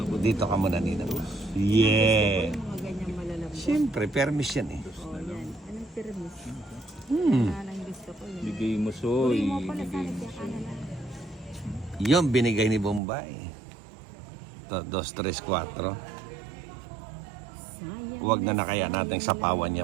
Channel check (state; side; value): drops out; left; at 13.0 s